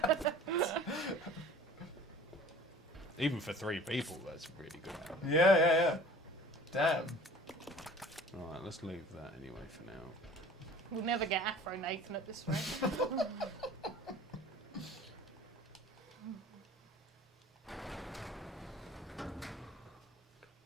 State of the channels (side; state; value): both; normal; correlation 0.47